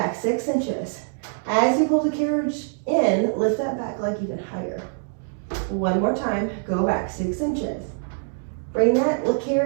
6 inches. As you pull the carriage in, lift that back leg even higher. One more time, go back 6 inches. Bring that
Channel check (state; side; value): silent; left; digital silence